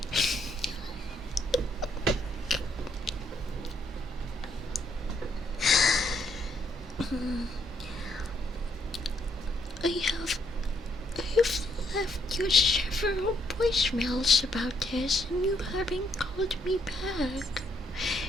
I've left you several voicemails about this and you haven't called me back.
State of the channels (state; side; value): normal; both; correlation 0.71